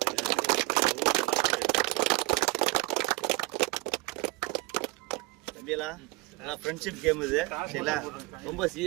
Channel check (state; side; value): quieter; left; 22.5 dB